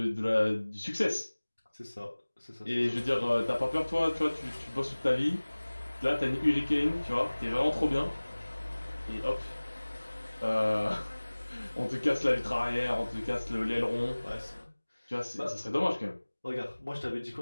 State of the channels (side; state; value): both; inverted; correlation -1.00